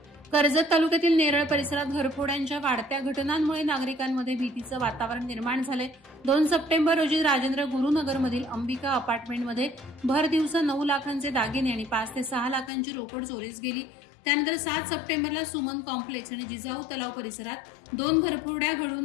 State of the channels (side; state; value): right; drops out; at 12.7 s